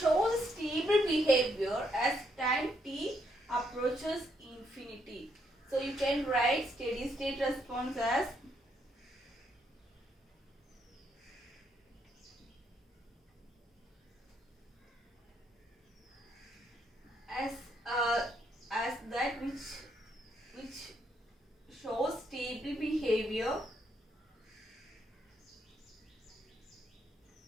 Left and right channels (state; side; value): normal; both; correlation 0.75